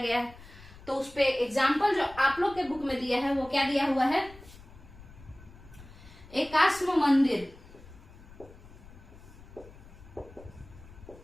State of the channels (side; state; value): left; noise; rumble, 20 dB below the sound